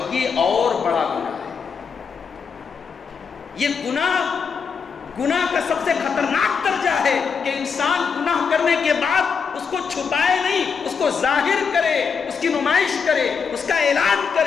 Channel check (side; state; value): right; quieter; 6.0 dB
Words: یہ اور بڑا گناہ ہے. یہ گناہ کا سب سے خطرناک درجہ ہے کہ انسان گناہ کرنے کے بعد اس کو چھپائے نہیں, اس کو ظاہر کرے, اس کی نمائش کرے, اس کا اعلان